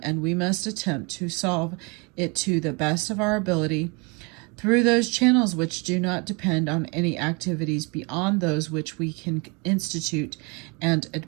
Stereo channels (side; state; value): left; quieter; 30.3 dB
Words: and we must attempt to solve it to the best of our ability through those channels which do not depend on any activities beyond those which we can institute and